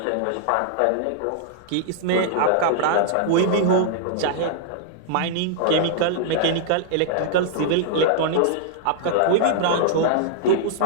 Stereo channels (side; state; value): both; different; correlation -0.01